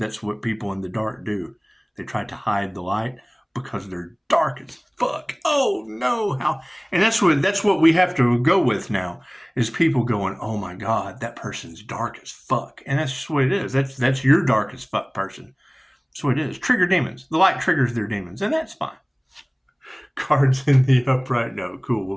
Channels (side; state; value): both; identical; correlation 1.00